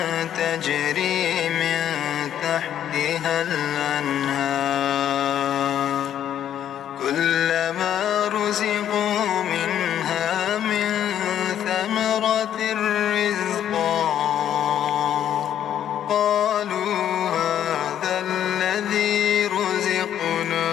تجري من تحتها الأنهار كلما رزقوا منها من ثمرة رزقا قالوا هذا الذي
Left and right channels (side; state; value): right; quieter; 10.4 dB